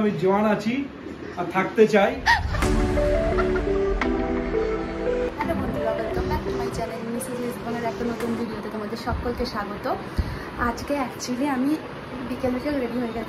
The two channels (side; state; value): both; identical; correlation 1.00